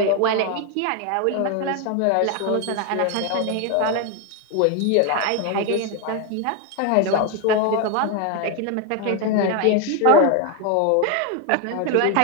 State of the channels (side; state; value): both; different; correlation 0.01